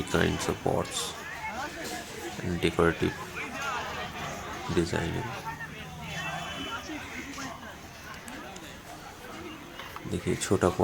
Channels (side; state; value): both; identical; correlation 1.00